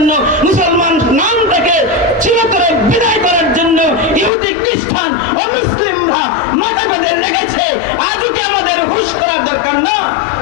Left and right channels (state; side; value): drops out; right; at 4.3 s